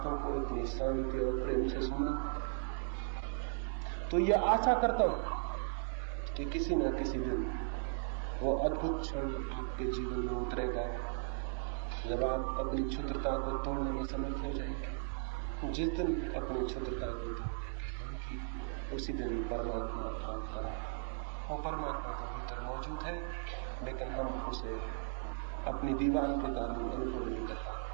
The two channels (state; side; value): silent; left; 53 dB below the other